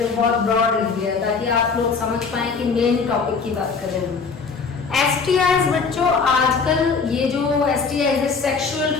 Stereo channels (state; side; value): quieter; right; 5.1 dB